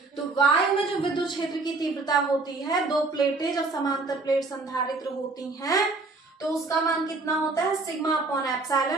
तो वायु में जो विद्युत क्षेत्र की तीव्रता होती है, दो प्लेटें जब समांतर प्लेट संधारित्र होती हैं, तो उसका मान कितना होता है, सिग्मा अपॉन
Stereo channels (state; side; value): quieter; left; 3.6 dB